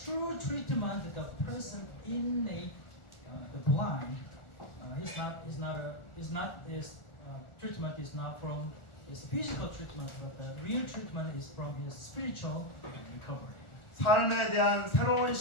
treatment, the person innate, the blind, his treatment is not from his physical treatment, but the real treatment is from his spiritual recovery. 삶에 대한 새로운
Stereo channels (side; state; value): right; late; 1.4 ms